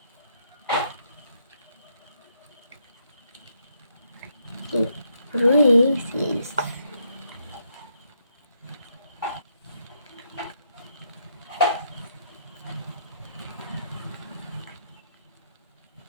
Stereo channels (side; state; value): both; inverted; correlation -0.75